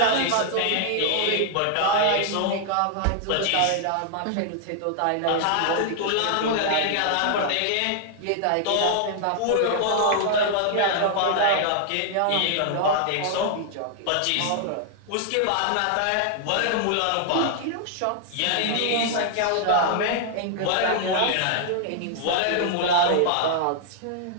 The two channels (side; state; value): both; different; correlation 0.00